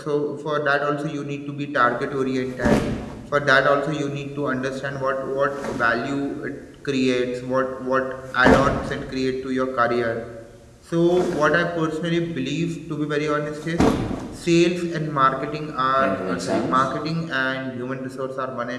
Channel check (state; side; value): identical; both; correlation 1.00